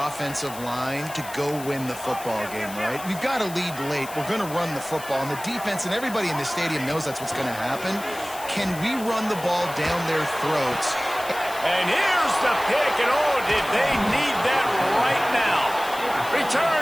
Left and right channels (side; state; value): left; noise; hiss, 14 dB below the sound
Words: line to go win the football game, right? We've got to lead late. We're going to run the football, and the defense and everybody in the stadium knows that's what's going to happen. Can we run the ball down their throats And here's the pick, and oh, did they need that right now. Return